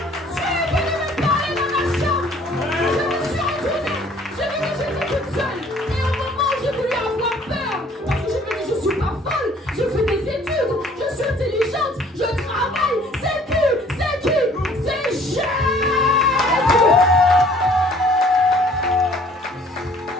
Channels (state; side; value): normal; both; correlation 0.56